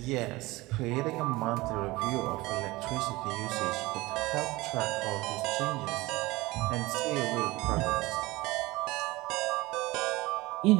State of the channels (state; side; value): quieter; left; 20.6 dB